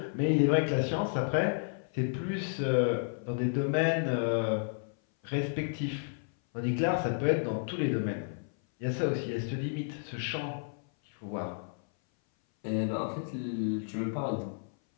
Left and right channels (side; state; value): right; silent; 57 dB below the other